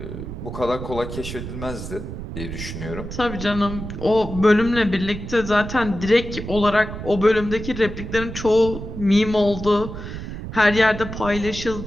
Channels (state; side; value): noise; right; rumble, 8 dB below the sound